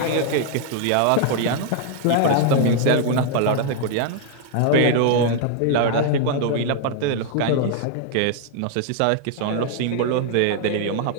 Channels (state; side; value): different; both; correlation 0.00